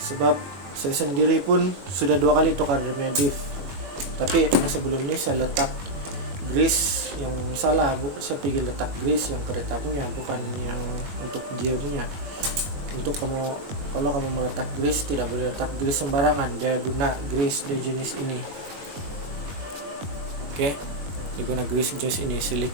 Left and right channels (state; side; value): late; left; 21 ms